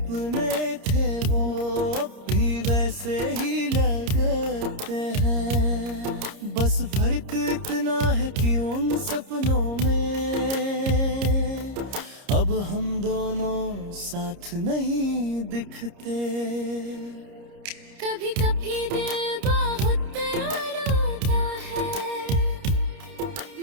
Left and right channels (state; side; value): late; left; 30 ms